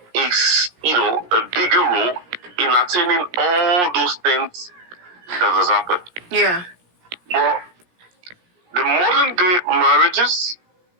a bigger role in attaining all those things that has happened. Yeah. But the modern day marriages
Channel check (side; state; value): left; late; 17 ms